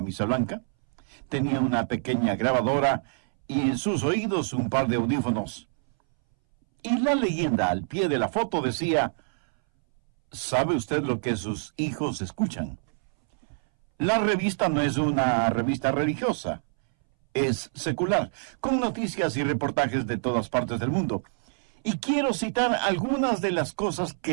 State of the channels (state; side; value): silent; left; 61 dB below the other